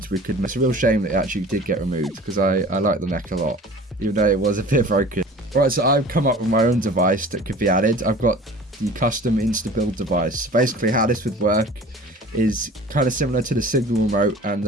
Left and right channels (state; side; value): normal; both; correlation 0.43